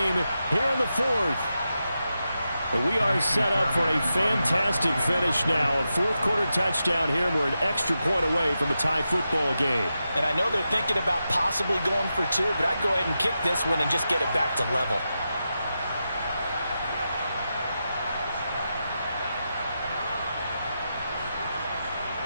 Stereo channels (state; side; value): inverted; both; correlation -0.89